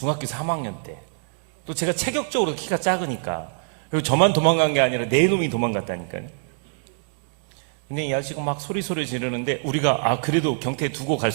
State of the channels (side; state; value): left; silent; digital silence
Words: 3학년 때, 또 제가 체격적으로 키가 작으니까, 그리고 저만 도망간 게 아니라 네 놈이 도망갔다니까요. 근데 이 아저씨가 막 소리 지르는데 우리가 그래도 경태에 두고 갈